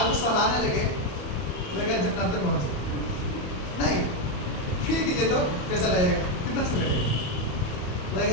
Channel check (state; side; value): late; right; 27 ms